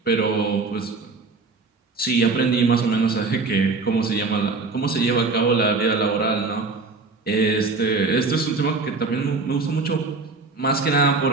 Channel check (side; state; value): left; quieter; 3.9 dB